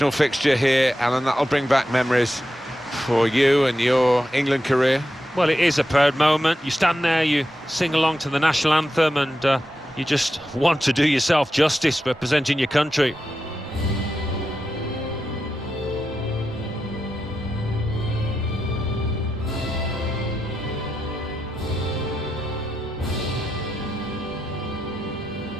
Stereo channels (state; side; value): normal; both; correlation 0.88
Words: fixture here, Alan. That'll bring back memories for you and your England career. Well, it is a proud moment. You stand there, you sing along to the national anthem, and you just want to do yourself justice representing your country.